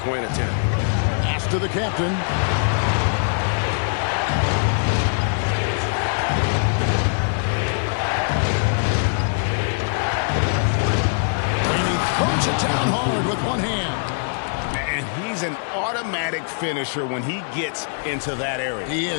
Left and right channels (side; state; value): right; silent; digital silence